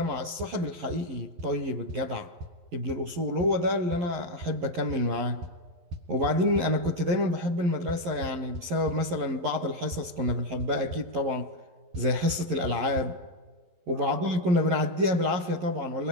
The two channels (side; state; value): left; late; 11 ms